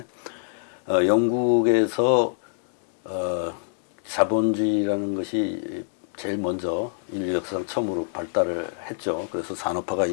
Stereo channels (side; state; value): right; silent; digital silence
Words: 영국에서 자본주의라는 것이 제일 먼저 인류 역사상 처음으로 발달을 했죠. 그래서 산업화가